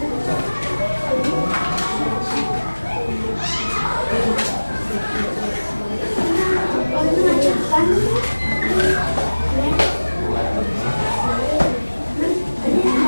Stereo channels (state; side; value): inverted; both; correlation -1.00